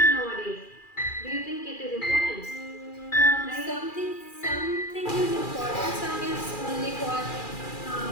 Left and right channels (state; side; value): late; right; 2.4 ms